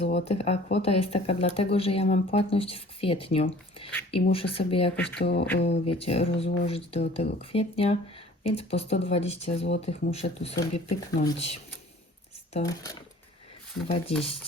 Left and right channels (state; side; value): normal; both; correlation 0.50